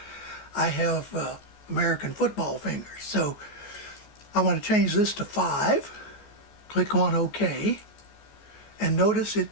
I have American football fingers. So I want to change this to 5. Click on OK, and notice it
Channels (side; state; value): right; late; 14 ms